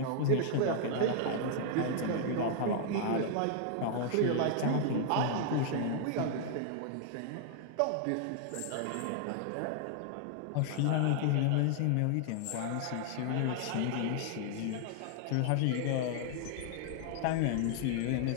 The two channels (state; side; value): different; both; correlation -0.01